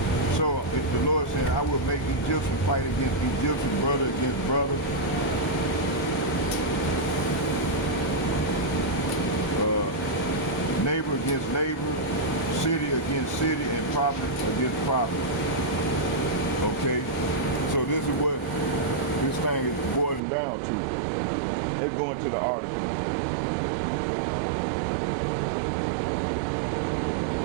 So if the Lord said, I will make Egyptian fight against Egyptian, brother against brother, neighbor against neighbor, city against city, and prophet against prophet. Okay? So this is what this thing is boiling down to. Let's go into the article.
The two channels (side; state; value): left; drops out; at 20.2 s